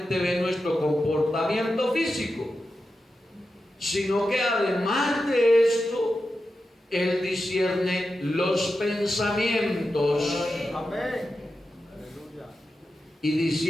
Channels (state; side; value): normal; both; correlation 0.90